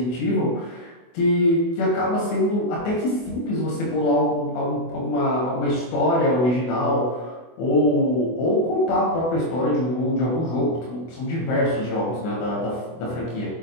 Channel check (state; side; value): late; right; 24 ms